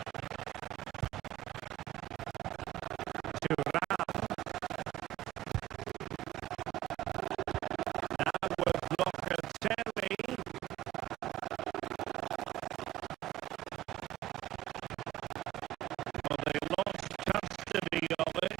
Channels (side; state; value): left; quieter; 14.6 dB